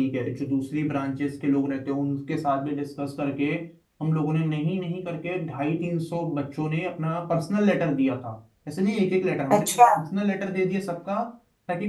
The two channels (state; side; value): identical; both; correlation 1.00